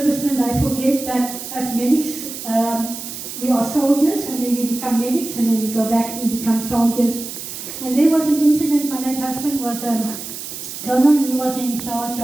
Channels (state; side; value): noise; right; hiss, 9 dB below the sound